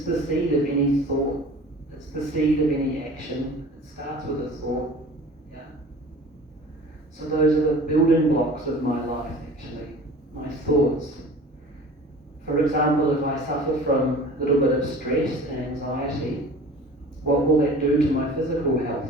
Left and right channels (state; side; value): normal; both; correlation 0.42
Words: the seed of any thought. It's the seed of any action. It starts with a thought. Yeah? So those are the building blocks of my life, actually. My thoughts. For example, if I suffer from a little bit of stress and anxiety, what will that do to my physical